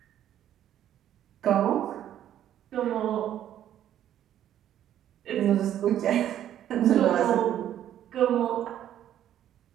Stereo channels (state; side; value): quieter; left; 11.1 dB